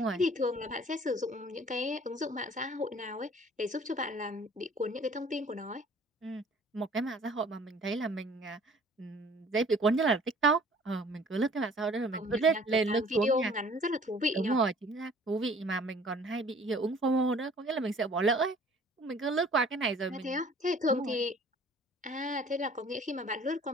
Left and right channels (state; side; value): normal; both; correlation 0.52